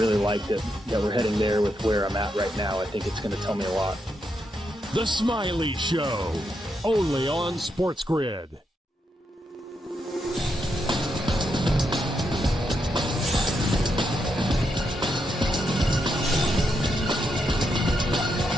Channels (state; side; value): normal; both; correlation 0.82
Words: like that we're heading there with where I'm at right now. I think it's going to tell me a lot. The Smiley Show, only on SportsGrid.